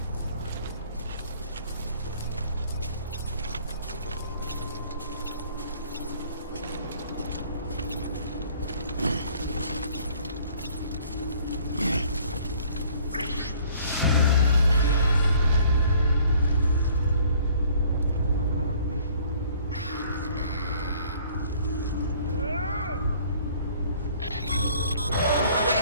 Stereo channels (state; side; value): inverted; both; correlation -0.56